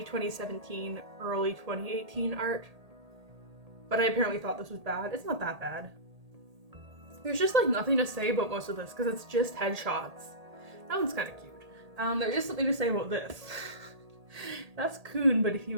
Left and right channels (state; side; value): late; left; 1.8 ms